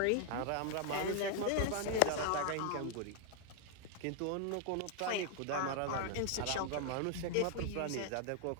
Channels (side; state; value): both; different; correlation 0.00